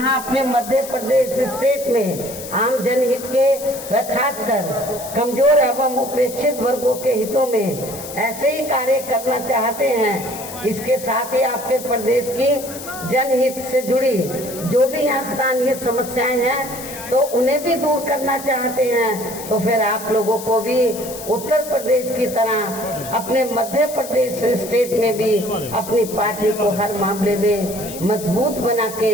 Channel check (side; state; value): left; noise; hiss, 12 dB below the sound